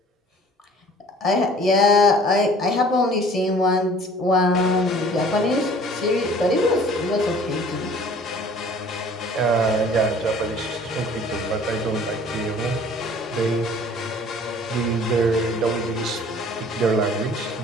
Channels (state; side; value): normal; both; correlation 0.51